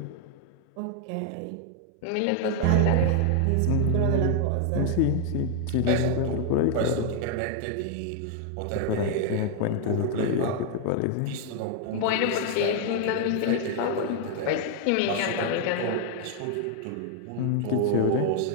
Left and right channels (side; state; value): both; different; correlation 0.00